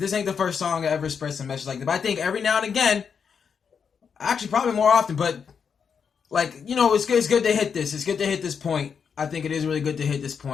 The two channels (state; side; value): quieter; right; 6.6 dB